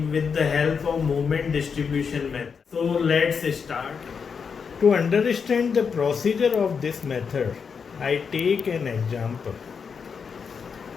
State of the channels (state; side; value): quieter; right; 6.0 dB